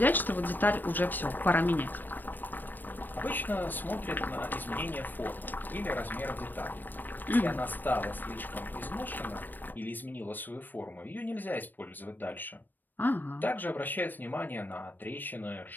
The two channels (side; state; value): right; late; 0.091 ms